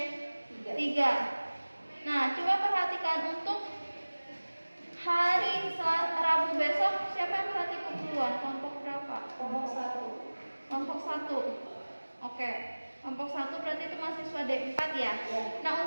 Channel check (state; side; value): inverted; both; correlation -1.00